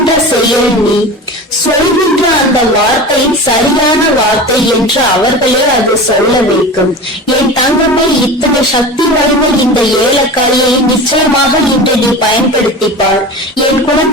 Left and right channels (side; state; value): both; normal; correlation 0.31